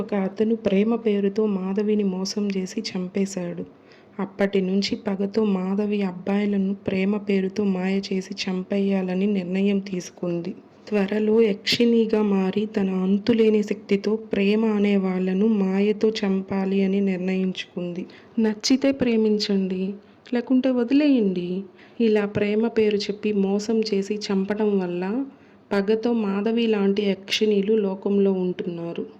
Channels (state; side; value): identical; both; correlation 1.00